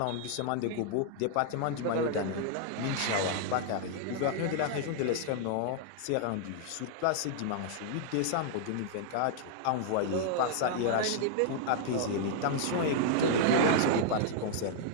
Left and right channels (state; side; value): different; both; correlation -0.01